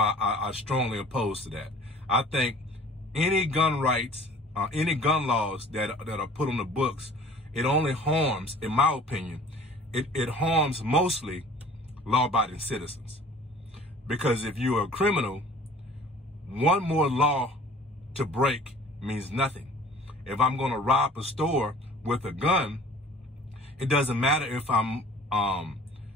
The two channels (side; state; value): both; normal; correlation 0.48